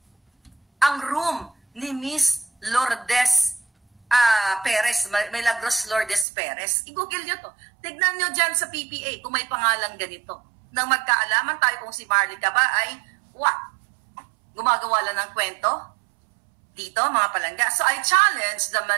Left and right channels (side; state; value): left; drops out; at 6.2 s